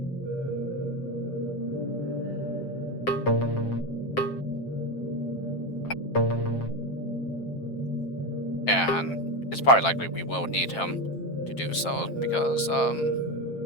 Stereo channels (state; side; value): late; right; 7.5 ms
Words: And it's probably likely we will need him to do so because